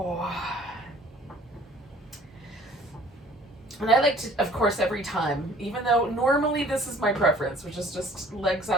And I like to, of course, every time, even though normally this is my preference, which is just legs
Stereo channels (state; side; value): normal; both; correlation 0.52